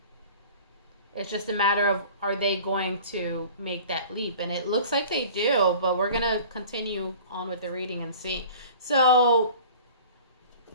It's just a matter of, are they going to make that leap? And it looks like they do, but we're going to continue on with the reading and see. So,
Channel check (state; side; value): inverted; both; correlation -0.43